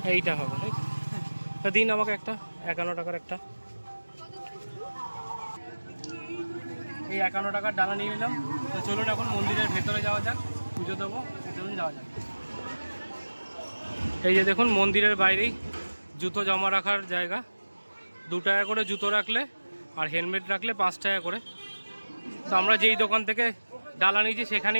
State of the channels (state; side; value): inverted; both; correlation -1.00